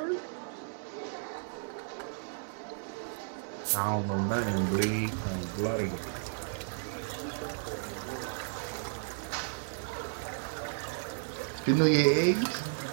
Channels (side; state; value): left; silent; 55 dB below the other